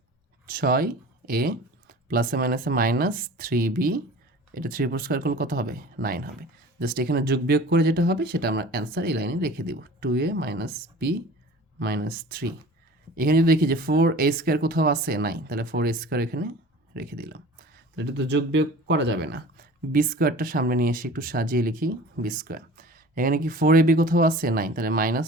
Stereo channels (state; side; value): normal; both; correlation 0.42